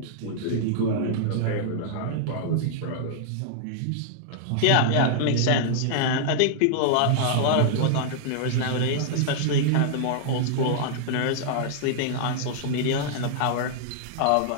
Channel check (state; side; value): different; both; correlation -0.01